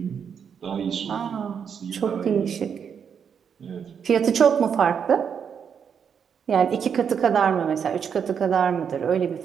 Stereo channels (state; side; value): quieter; left; 7.3 dB